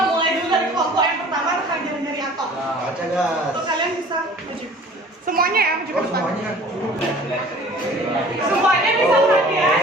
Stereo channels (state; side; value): normal; both; correlation 0.48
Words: mulai dulu dari kelompok yang pertama tentang jari-jari atom. Baca gas. Untuk kalian bisa maju. Semuanya ya, maju ke depan. Semuanya bisa perhatian.